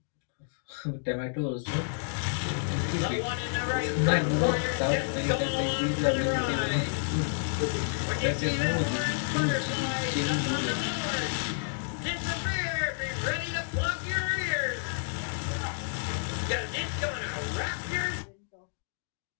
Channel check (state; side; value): silent; right; digital silence